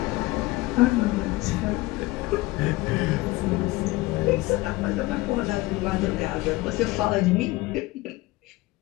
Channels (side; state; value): right; quieter; 20.1 dB